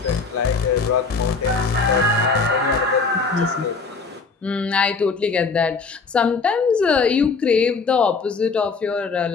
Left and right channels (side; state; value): right; quieter; 4.6 dB